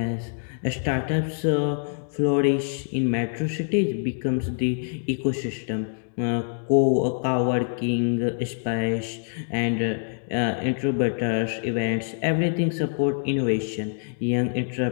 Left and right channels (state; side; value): silent; right; digital silence